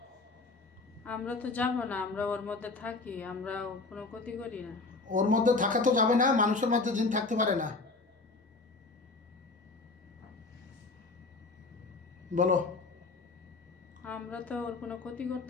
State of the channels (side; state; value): right; quieter; 3.7 dB